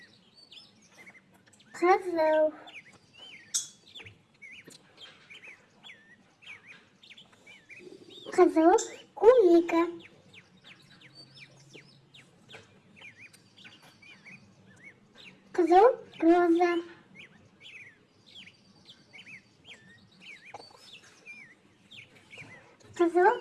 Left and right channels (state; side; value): identical; both; correlation 1.00